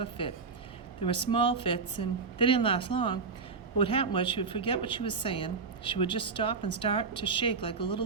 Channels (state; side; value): quieter; left; 4.8 dB